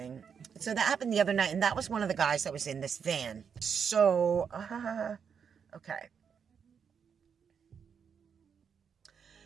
So that happened the other night, and that was one of the guys that was in this van. So, okay.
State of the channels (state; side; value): quieter; left; 6.9 dB